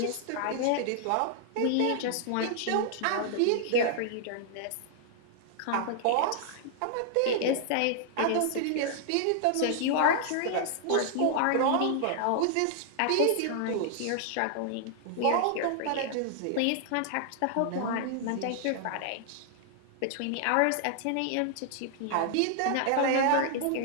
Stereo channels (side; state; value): both; different; correlation -0.01